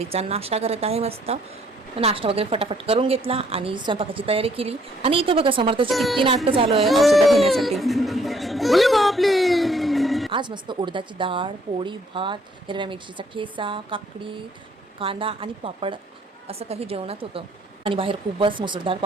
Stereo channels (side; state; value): both; normal; correlation 0.65